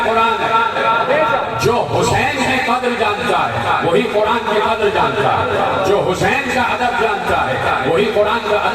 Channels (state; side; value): identical; both; correlation 1.00